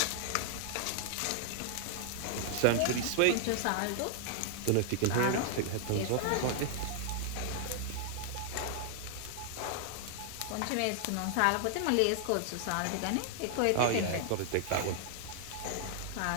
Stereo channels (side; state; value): both; different; correlation 0.00